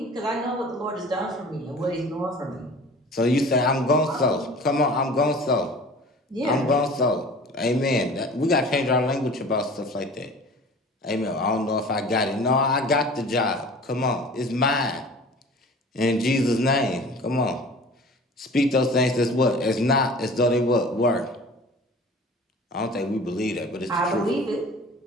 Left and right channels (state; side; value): normal; both; correlation 0.43